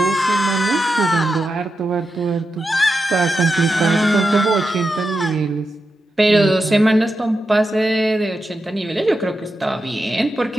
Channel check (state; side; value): normal; both; correlation 0.88